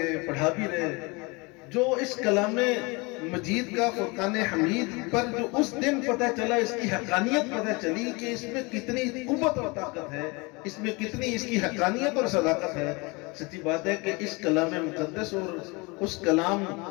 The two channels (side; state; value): right; quieter; 26.9 dB